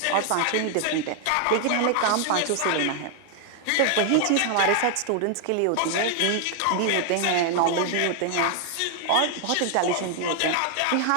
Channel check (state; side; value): different; both; correlation 0.00